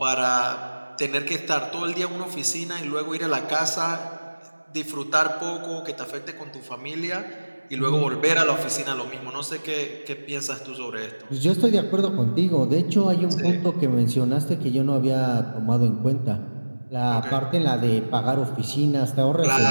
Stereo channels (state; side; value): inverted; both; correlation -1.00